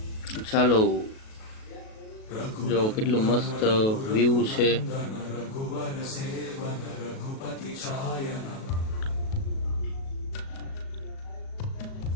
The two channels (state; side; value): late; right; 37 ms